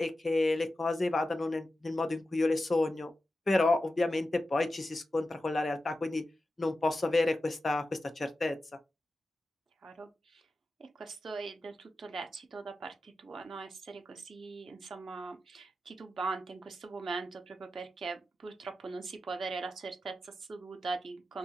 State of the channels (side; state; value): both; normal; correlation 0.92